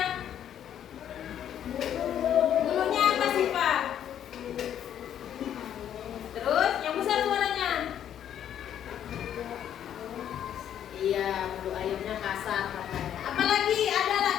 Bulunya apa sih, Pak? Terus yang besar suaranya? Iya, bulu ayamnya kasar katanya. Apa lagi?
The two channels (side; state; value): right; quieter; 10.0 dB